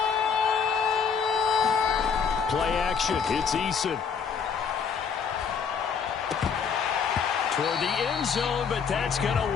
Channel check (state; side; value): quieter; right; 6.3 dB